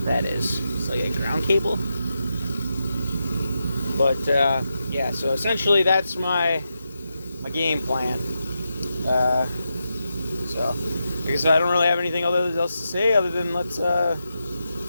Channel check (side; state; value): both; inverted; correlation -0.87